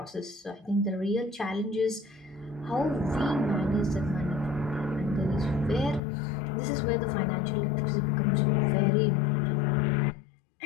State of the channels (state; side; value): drops out; right; at 6.0 s